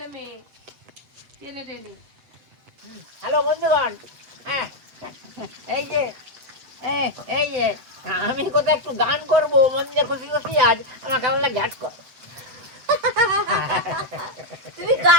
মেয়ে টেনে টেনে। হ্যালো বন্ধুগণ, হ্যাঁ এই যে এই যে আমি কোথাও একটু গান করবো, মন দিয়ে খুশি খুশি আজ আমার কেমন লাগে গান কর। তুমি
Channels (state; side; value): late; left; 8.0 ms